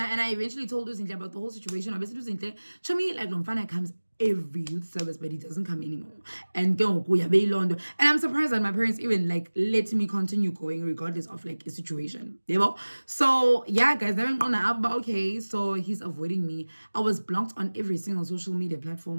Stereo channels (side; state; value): both; inverted; correlation -1.00